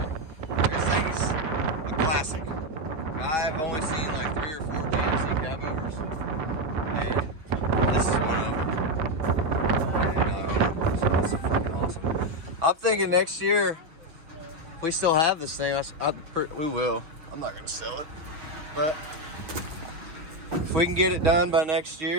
This thing's a classic. I've only seen like 3 or 4 GMC cab overs, and this is one of them. That's freaking awesome. I'm thinking next year, if we still have this thing, we will. I'm not gonna sell it, but if we can get it done by next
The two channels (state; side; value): late; left; 6.1 ms